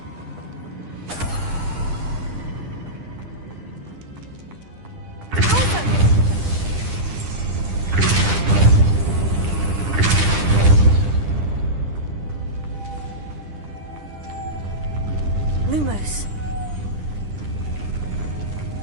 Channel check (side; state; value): left; late; 10 ms